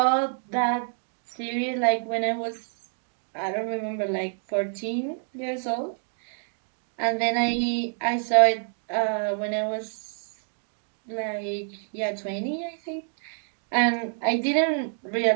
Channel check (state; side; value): silent; left; 60 dB below the other